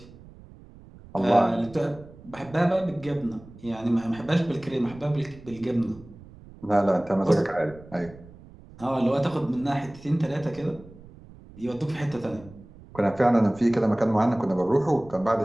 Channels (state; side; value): noise; right; rumble, 20 dB below the sound